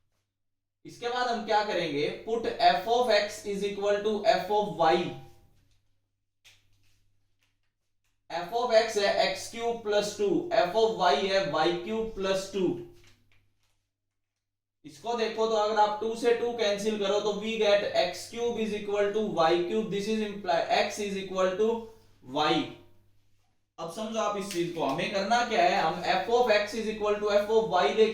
इसके बाद हम क्या करेंगे, put F of x is equal to F of Y. F of X है X cube plus 2, F of Y है वाई क्यूब प्लस 2। इसको देखो तो अगर आप 2 से 2 कैंसिल करो तो we get X cube is equal to Y cube. This is imply X is equal to Y. अब समझो आप इस चीज को, हमें करना क्या है, हम F of x is equal to F of Y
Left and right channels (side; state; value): both; identical; correlation 1.00